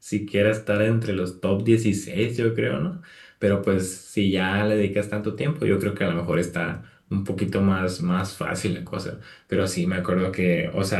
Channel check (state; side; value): identical; both; correlation 1.00